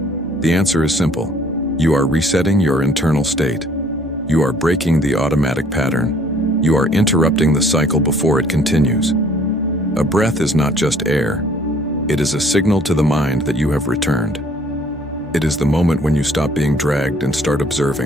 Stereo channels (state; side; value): normal; both; correlation 0.58